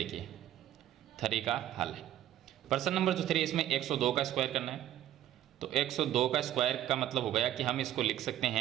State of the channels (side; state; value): left; quieter; 12.4 dB